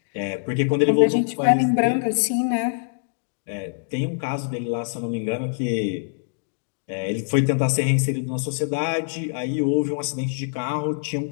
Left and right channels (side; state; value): right; silent; digital silence